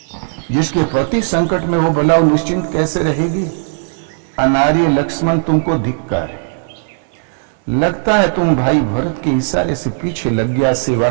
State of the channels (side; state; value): left; silent; 67 dB below the other